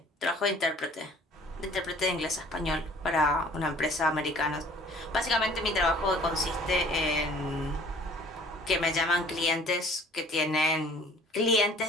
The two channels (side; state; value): both; normal; correlation 0.53